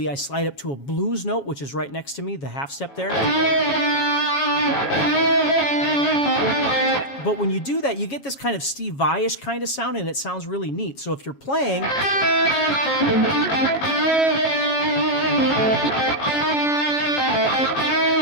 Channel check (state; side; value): late; right; 7.3 ms